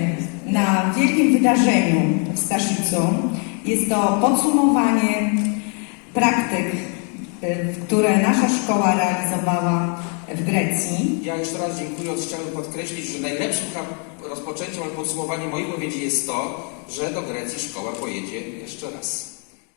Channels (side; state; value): right; quieter; 39.2 dB